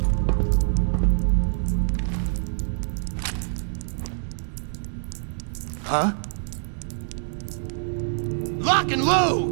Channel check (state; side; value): silent; left; digital silence